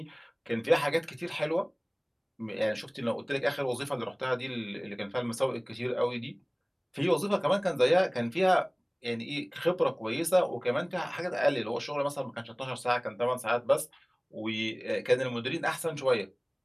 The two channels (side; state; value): both; identical; correlation 1.00